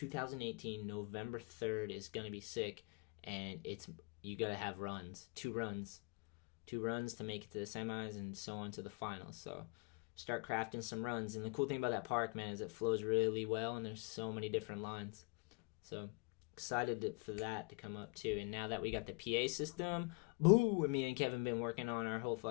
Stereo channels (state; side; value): quieter; right; 31.0 dB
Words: November 3rd is going to be sick, and you got to have runs, 2 runs to make it to the semis and so on to the finals. So start crafting some runs. And the cool thing about that park, man, is it flows really well, and there's so many different lines. So excited for that to come up too. And now that we got the PA system, boo, me and Kevin been working on our whole